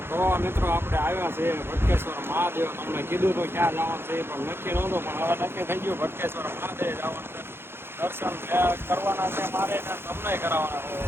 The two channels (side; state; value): left; late; 0.11 ms